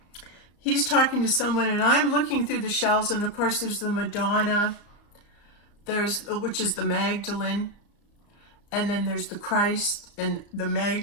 he's talking to someone, and I'm looking through the shelves, and of course there's the Madonna, which is the Magdalene, and then there's the Christ and the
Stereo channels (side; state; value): right; late; 34 ms